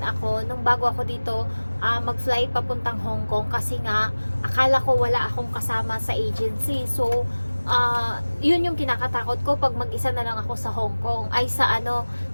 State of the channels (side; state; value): both; inverted; correlation -1.00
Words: ako nung bago ako dito mag-flight papuntang Hong Kong kasi nga akala ko wala akong kasama sa agency. So yun yung kinakatakot ko pag mag-isa na lang ako sa Hong Kong ay